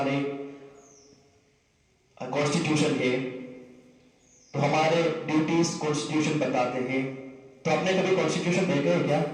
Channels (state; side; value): identical; both; correlation 1.00